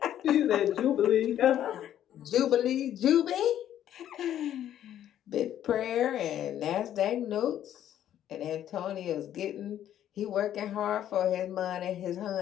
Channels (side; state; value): right; quieter; 11.1 dB